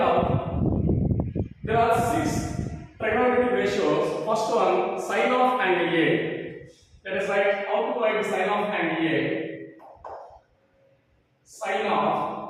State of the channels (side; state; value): both; identical; correlation 1.00